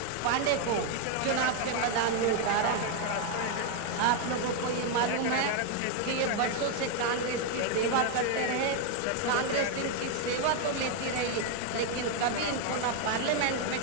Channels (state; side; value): different; both; correlation 0.01